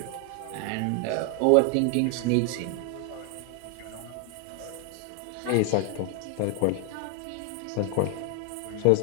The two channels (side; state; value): both; different; correlation 0.01